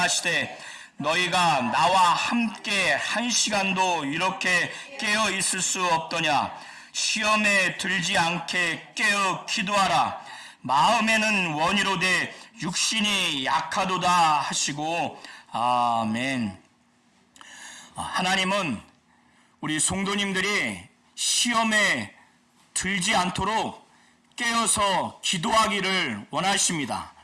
너희가 나와 함께 1시간도 이렇게 깨어 있을 수 없더냐. 시험에 들지 않게 깨어 기도하라. 마음에는 원이로되 육신이 약하도다 하시고 아멘. 하나님은 우리 성도님들이 시험에 들지 않도록 깨어서 기도하기를 원하십니다.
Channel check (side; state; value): both; identical; correlation 1.00